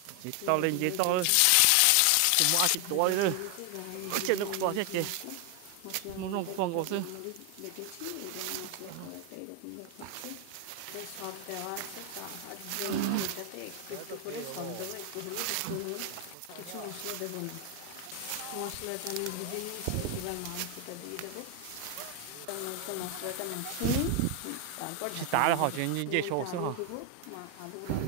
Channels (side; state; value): both; different; correlation 0.01